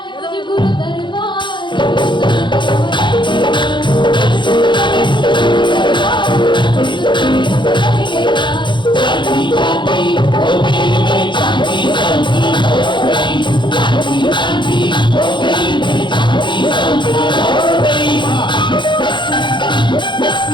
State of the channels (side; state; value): right; late; 0.23 ms